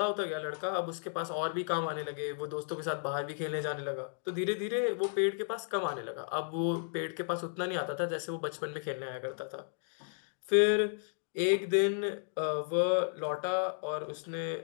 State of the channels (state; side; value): silent; right; digital silence